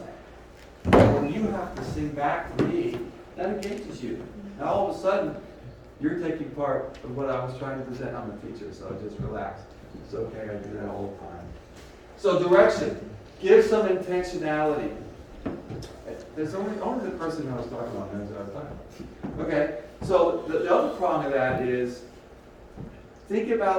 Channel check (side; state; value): both; identical; correlation 1.00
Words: When you have to sing back to me, that engages you. Now all of a sudden, you're taking part of what I was trying to present. I'm a teacher, so just relax. It's okay, I do that all the time. So direction. Give some intentionality. There's only the person I was talking about knows what I was talking about. Okay, so the other prong of that is think